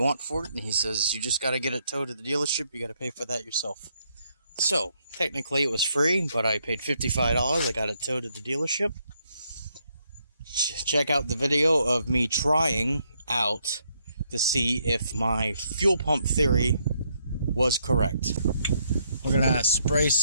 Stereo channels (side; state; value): both; inverted; correlation -0.74